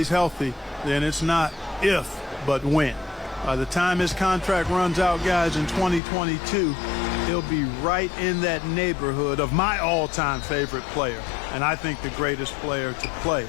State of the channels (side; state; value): right; drops out; at 6.0 s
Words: healthy, then it's not if, but when. By the time his contract runs out, guys, in 2022, he'll be right in that neighborhood of my all-time favorite player, and I think the greatest player to play,